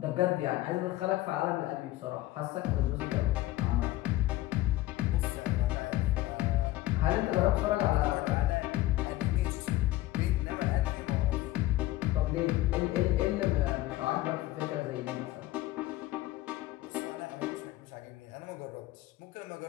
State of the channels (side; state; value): right; quieter; 16.7 dB